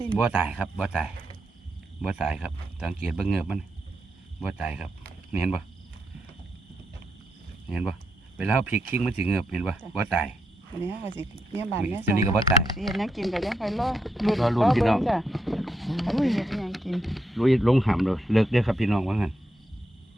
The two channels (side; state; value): both; normal; correlation 0.82